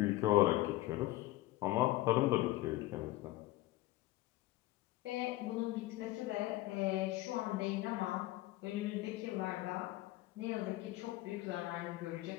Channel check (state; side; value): quieter; right; 17.6 dB